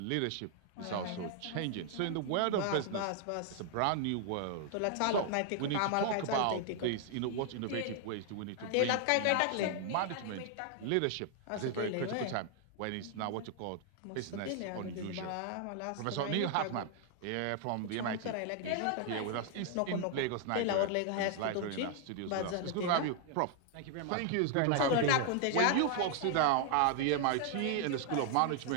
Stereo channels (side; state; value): both; different; correlation 0.00